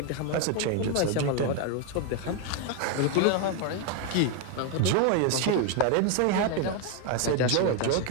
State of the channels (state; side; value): different; both; correlation 0.01